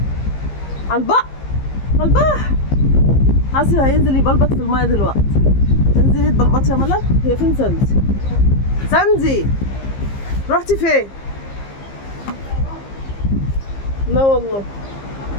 على البحر. على البحر. عاصم هينزل يبلبط في المايه دلوقتي. انزلي تبلبطي يا ملك. هي فين ساندي؟ ساندي رحتي فين؟ لا والله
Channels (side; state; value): right; late; 15 ms